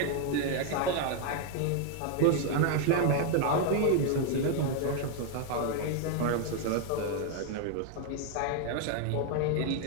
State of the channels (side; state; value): both; different; correlation 0.00